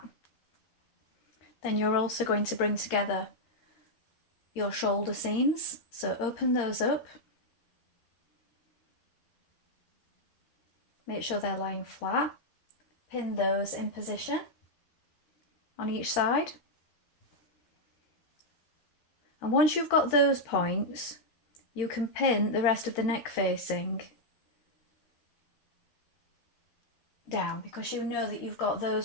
Then you're also going to bring together your shoulder seams. So open those up. Make sure they're lying flat. Pin those in position on each side. And once you've got those points, you can pin the rest of the neck facing down because you know that you've got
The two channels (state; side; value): late; right; 13 ms